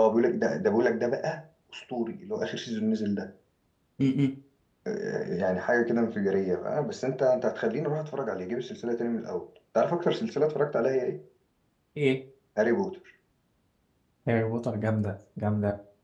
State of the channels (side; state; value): both; identical; correlation 1.00